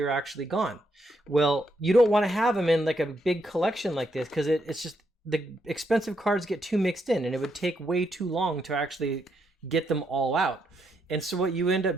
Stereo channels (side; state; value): both; normal; correlation 0.78